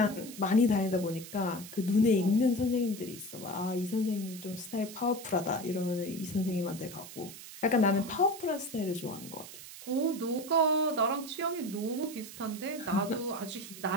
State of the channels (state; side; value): noise; right; hiss, 14 dB below the sound